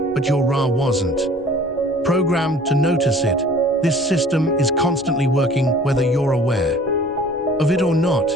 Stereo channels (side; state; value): both; normal; correlation 0.49